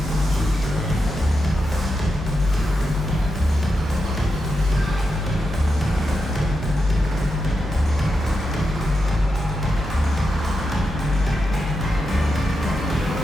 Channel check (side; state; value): both; normal; correlation 0.87